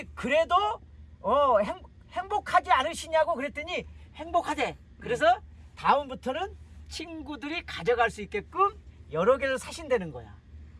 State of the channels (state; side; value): identical; both; correlation 1.00